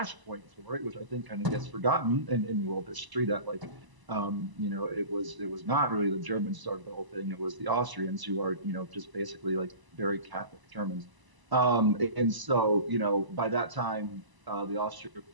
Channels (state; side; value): late; left; 1.0 ms